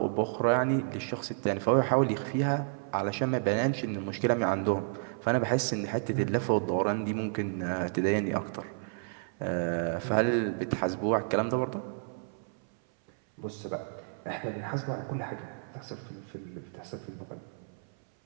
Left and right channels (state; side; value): silent; left; 57 dB below the other